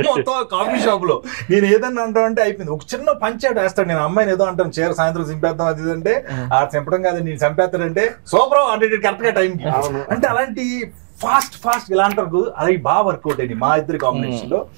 మొత్తం కాఫీ షాప్ లో. నేను ఏదన్నా అంటానంటే అయిపోయింది. ఒక చిన్న పంచాడు వేస్తాడు, నేను అమ్మాయిని ఏదో అంటాను చీర సాయంత్రం చింపేద్దాం అది అంటే ఆ చంపడం కాదు నేను చంపేస్తాడంటే సూపర్ అంటే కరెక్ట్ గా టైంకి. అంటే అలాంటి ఫాస్ట్ ఇలా అంటారు అది బాగా వర్కౌట్ అయింది మా ఇద్దరి కాంబినేషన్ లో.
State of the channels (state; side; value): silent; left; digital silence